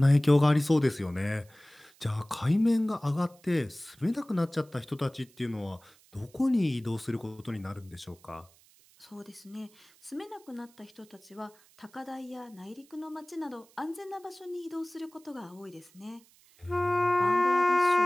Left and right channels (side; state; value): right; noise; hiss, 29 dB below the sound